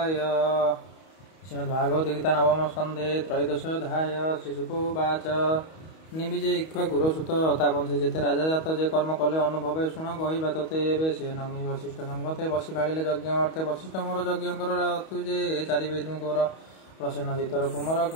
श्रीमद्भागवत गीता नवम स्कंधे त्रयोदशोऽध्याय। श्रीशुकोवाच। निबिजे इक्ष्वाकुर सुत तापंसे जेते राजा जात जे कर्म कले अनुभवे शुण कहवा तोते एबे से नमी वशिष्ठ संगते बसी भाड़िले यज्ञ अर्थे वशिष्ठ मोर यज्ञ कर तु जे चारि वेदुकर प्रसन्न चितर कुमर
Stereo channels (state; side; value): late; right; 31 ms